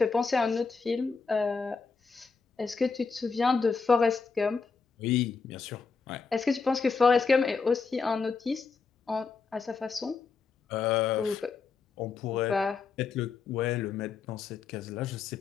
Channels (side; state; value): right; quieter; 5.0 dB